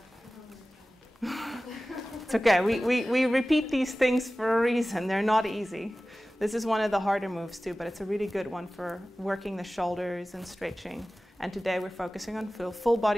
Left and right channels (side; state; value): both; normal; correlation 0.96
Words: It's okay, we repeat these things for a reason. They're not easy. This is one of the harder moves too, but it's a really good one for working the shoulders and stretching. And today we're focusing on full